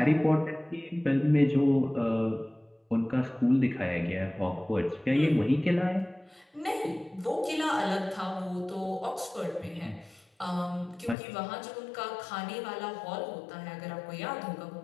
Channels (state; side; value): drops out; right; at 11.2 s